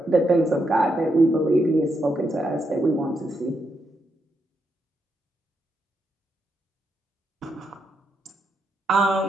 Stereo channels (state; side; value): normal; both; correlation 0.81